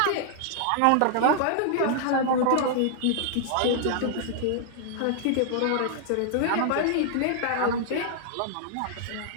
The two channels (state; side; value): different; both; correlation -0.01